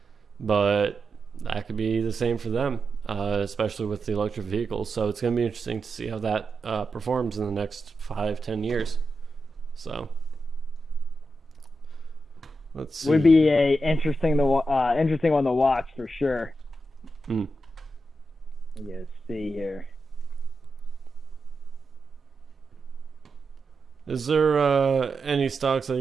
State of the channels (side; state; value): both; normal; correlation 0.88